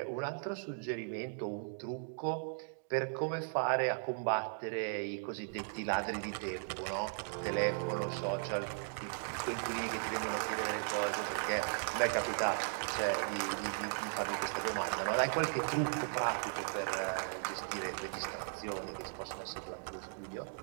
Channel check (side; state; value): left; silent; digital silence